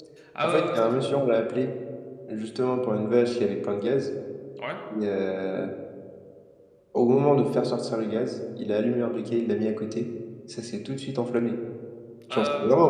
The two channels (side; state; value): both; identical; correlation 1.00